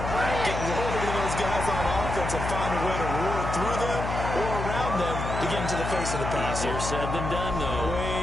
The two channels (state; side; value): noise; left; hum, 4 dB below the sound